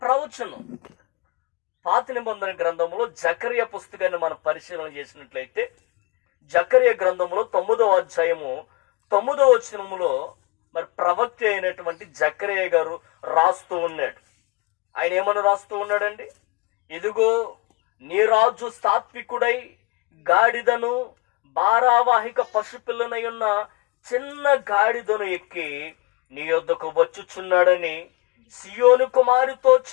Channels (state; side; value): quieter; right; 24.5 dB